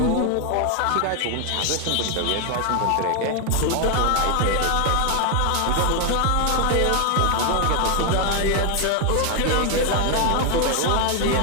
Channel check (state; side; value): different; both; correlation 0.01